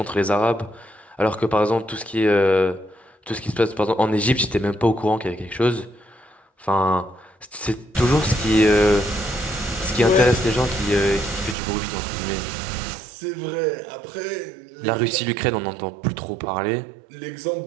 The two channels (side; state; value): left; drops out; at 11.6 s